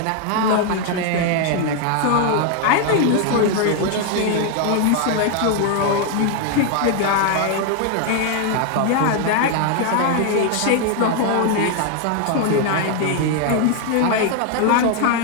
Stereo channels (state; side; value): different; both; correlation 0.00